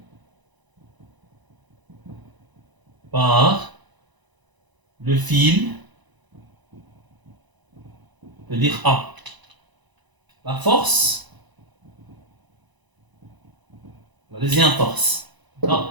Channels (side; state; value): left; late; 1.0 ms